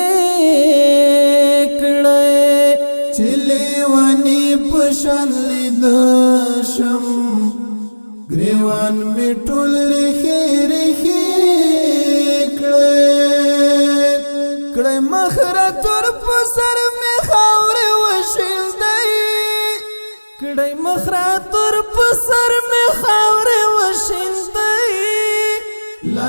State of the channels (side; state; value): both; inverted; correlation -1.00